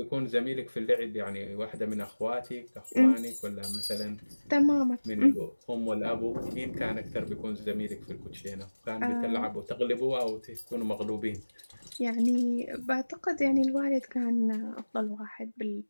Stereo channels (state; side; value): inverted; both; correlation -1.00